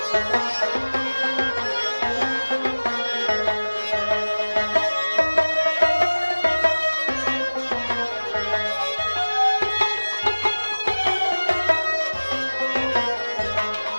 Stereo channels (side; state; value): both; inverted; correlation -1.00